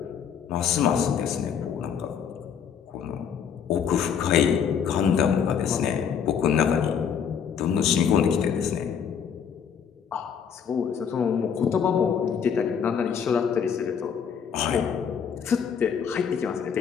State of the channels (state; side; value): quieter; right; 7.4 dB